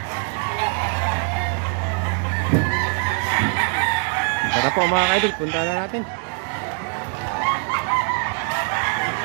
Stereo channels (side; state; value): left; quieter; 39.0 dB